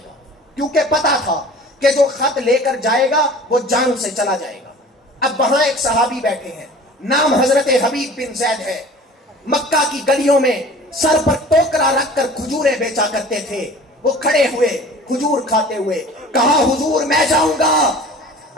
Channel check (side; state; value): both; normal; correlation 0.43